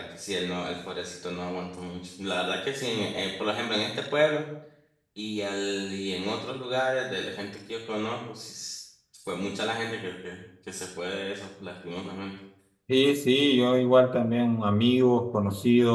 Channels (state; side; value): identical; both; correlation 1.00